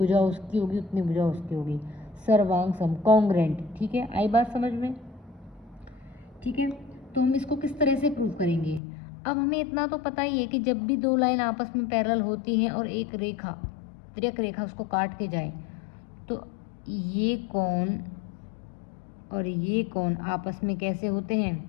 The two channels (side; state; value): right; drops out; at 8.8 s